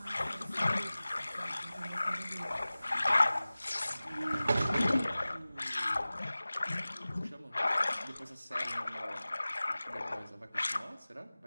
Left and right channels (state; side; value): inverted; both; correlation -0.98